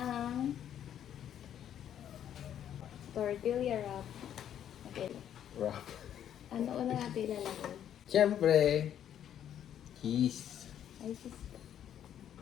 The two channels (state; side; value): quieter; right; 10.1 dB